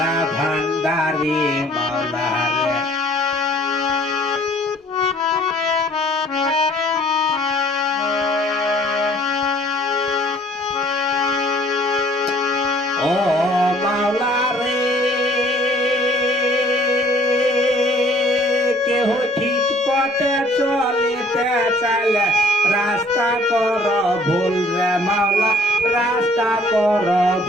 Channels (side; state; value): both; normal; correlation 0.56